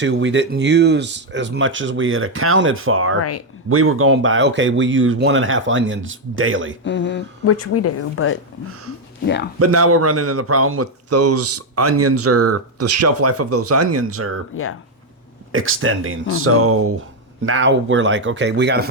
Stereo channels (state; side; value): normal; both; correlation 0.03